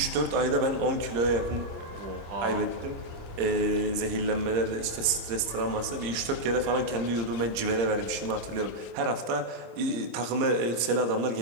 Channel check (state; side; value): late; left; 26 ms